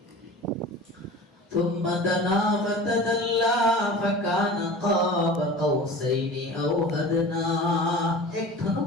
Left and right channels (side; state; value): both; normal; correlation 0.37